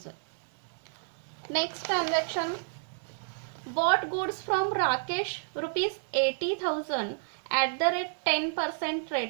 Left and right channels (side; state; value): left; silent; digital silence